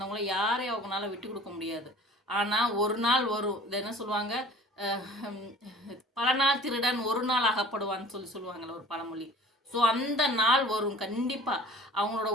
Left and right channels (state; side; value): normal; both; correlation 0.46